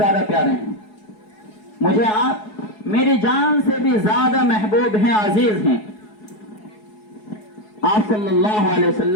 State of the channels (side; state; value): right; late; 4.7 ms